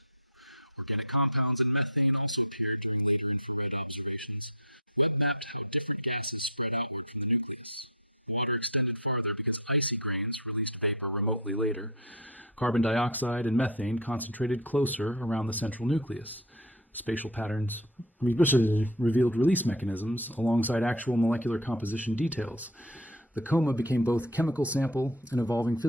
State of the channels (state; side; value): normal; both; correlation 0.22